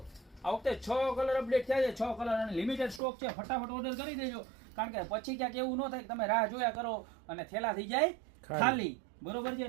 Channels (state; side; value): drops out; left; at 3.0 s